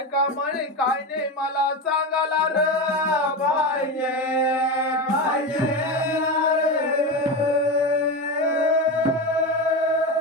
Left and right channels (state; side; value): normal; both; correlation 0.20